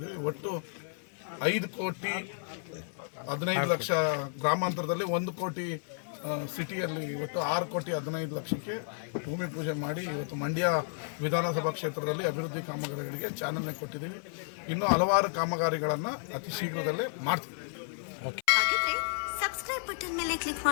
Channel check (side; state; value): right; silent; 56 dB below the other